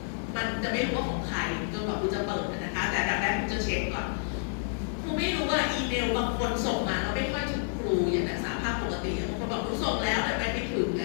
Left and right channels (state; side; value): silent; right; digital silence